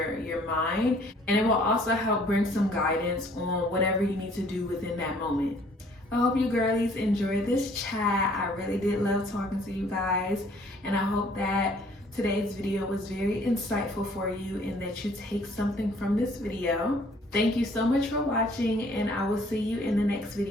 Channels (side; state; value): both; normal; correlation 0.58